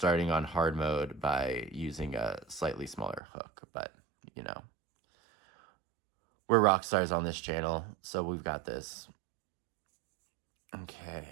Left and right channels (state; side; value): drops out; left; at 3.2 s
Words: on hard mode by using a slightly smaller hook, but you know, we're rock stars on this channel, so we've got this. Okay,